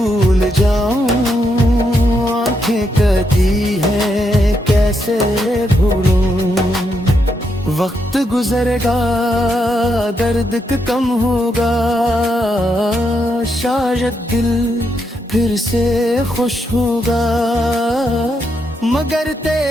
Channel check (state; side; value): normal; both; correlation 0.80